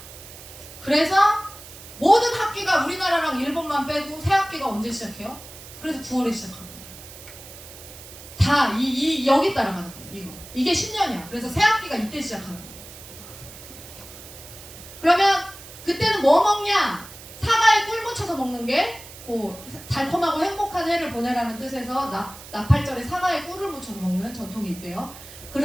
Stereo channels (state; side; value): noise; right; hiss, 16 dB below the sound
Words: 그래서 모든 학기가 우리나라랑 일본만 빼고 새 학기가 언제 시작해요? 그래서 9월에 시작하는 거예요. 다 여기 따라가는 거예요. 이게 10년이야. 그래서 새 학기가 이때 시작하는 거예요. 그러면 그때는 뭐 먹냐? 사과에 꿀 묻혀서 먹는 게 달콤하고 행복한 해를 보내라는 뜻에서 나팔절에 사과에 꿀을 묻혀서 먹는 전통이 있대요.